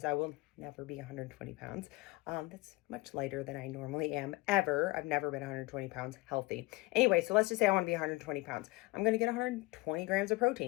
I will never be 120 pounds. That's much lighter than I normally am ever. I've never been 120 pounds healthy. Anyway, so let's just say I want to be 120 pounds. I'm going to get 120 grams of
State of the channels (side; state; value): right; quieter; 22.7 dB